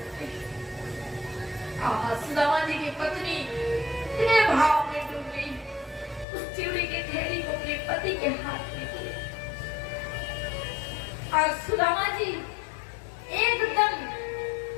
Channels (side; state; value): right; drops out; at 6.2 s